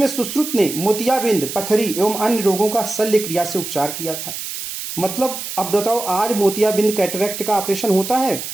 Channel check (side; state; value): right; noise; hiss, 7 dB below the sound